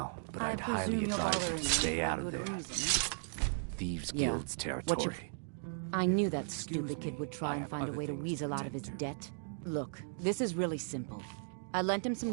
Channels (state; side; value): silent; left; digital silence